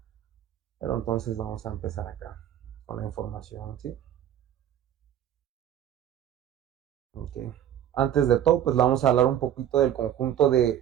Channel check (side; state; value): left; quieter; 10.6 dB